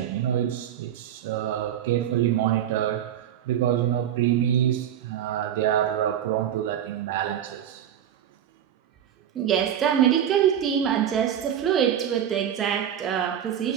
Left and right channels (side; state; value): left; quieter; 10.0 dB